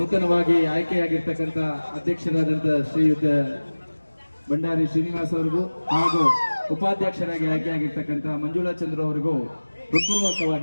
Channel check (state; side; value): inverted; both; correlation -1.00